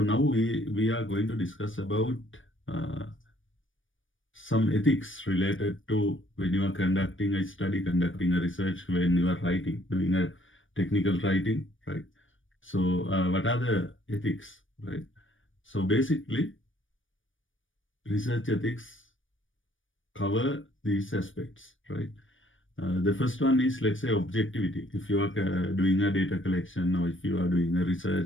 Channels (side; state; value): right; late; 0.57 ms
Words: we are going to discuss about uh, some ethics related to when you are conducting a study, conducting a research, when you are writing, doing a technical writing, right? So, what are the ethics, right? So, basically, research ethics cover these aspects, right? The first one is, let's say, objectivity. If you are doing a data collection or if you are doing a